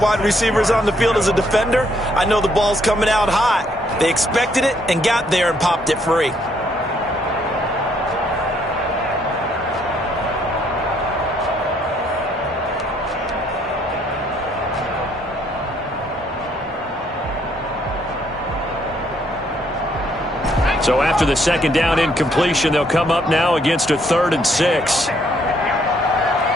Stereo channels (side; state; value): both; normal; correlation 0.69